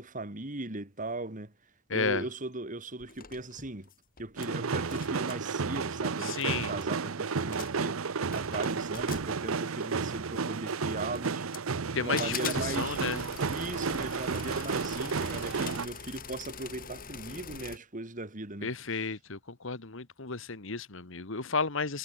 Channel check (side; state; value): both; normal; correlation -0.01